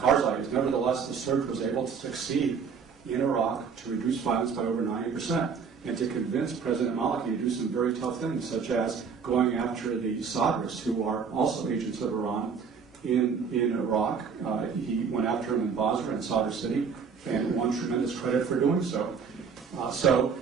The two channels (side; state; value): left; quieter; 6.1 dB